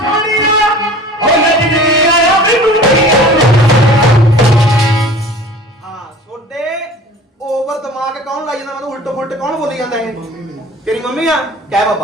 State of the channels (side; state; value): both; normal; correlation 0.43